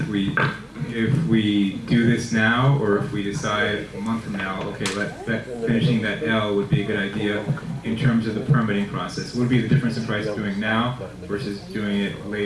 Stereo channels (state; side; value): identical; both; correlation 1.00